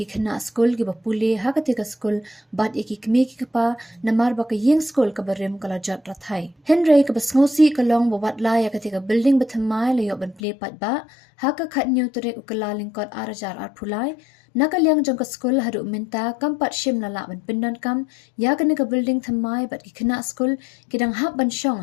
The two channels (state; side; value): drops out; right; at 10.4 s